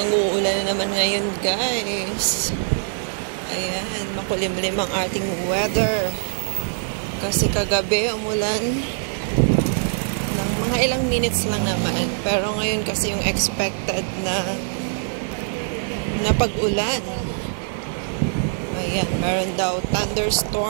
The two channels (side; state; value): left; silent; 60 dB below the other